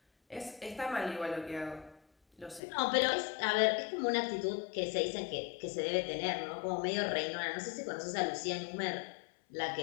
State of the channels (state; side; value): drops out; right; at 2.6 s